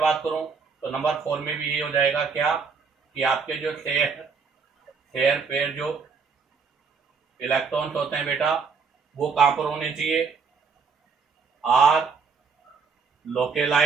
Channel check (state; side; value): quieter; left; 5.4 dB